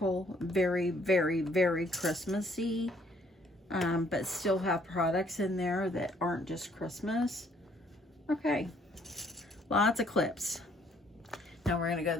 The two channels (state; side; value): normal; both; correlation 0.64